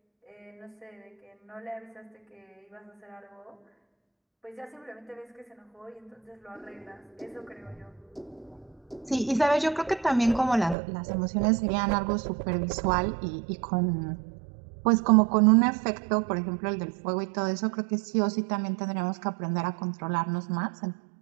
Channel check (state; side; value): drops out; left; at 10.8 s